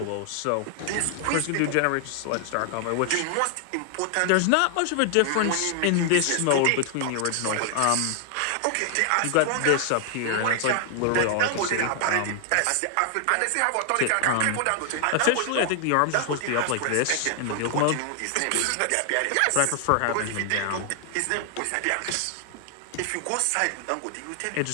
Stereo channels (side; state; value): both; different; correlation 0.00